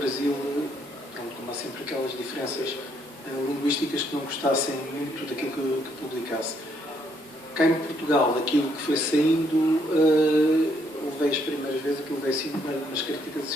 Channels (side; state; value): both; normal; correlation 0.72